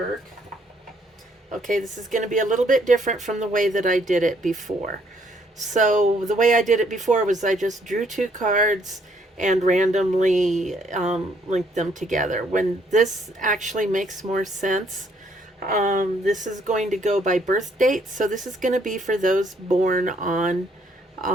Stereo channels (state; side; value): normal; both; correlation 0.67